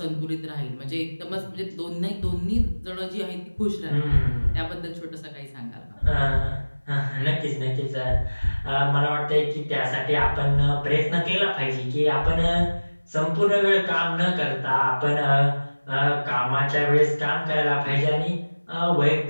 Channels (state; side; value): inverted; both; correlation -1.00